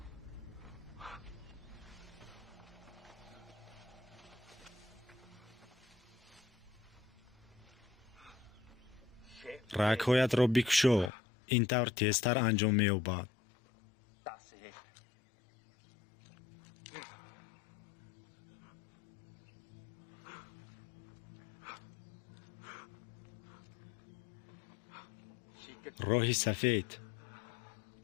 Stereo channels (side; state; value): right; drops out; at 11.1 s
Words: رگ‌هایت را بکشو. این طور تیزتر انجام می‌یابد. راه سفید.